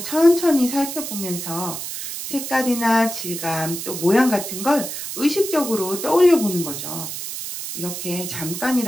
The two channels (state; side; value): noise; right; hiss, 7 dB below the sound